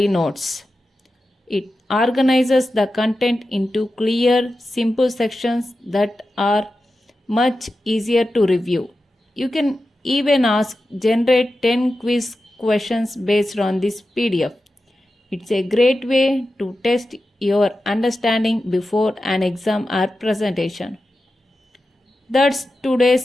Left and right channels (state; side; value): normal; both; correlation 0.92